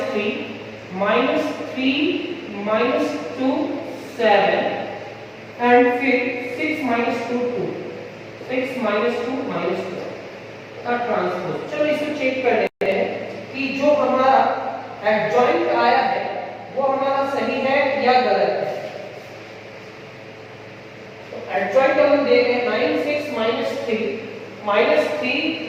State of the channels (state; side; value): identical; both; correlation 1.00